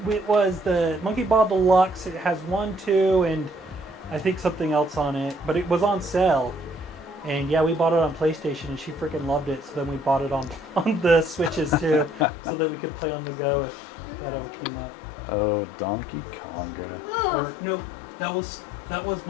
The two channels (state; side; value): drops out; right; at 12.2 s